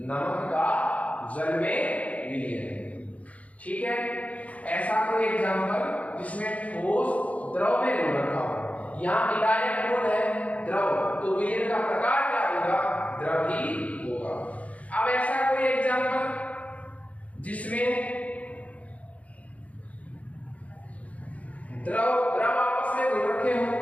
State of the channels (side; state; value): right; late; 0.067 ms